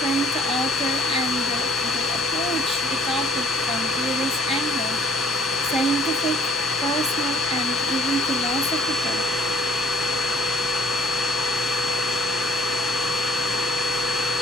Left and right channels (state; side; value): normal; both; correlation 0.58